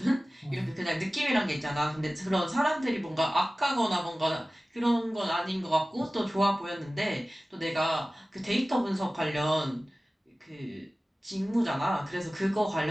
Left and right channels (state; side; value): normal; both; correlation 0.97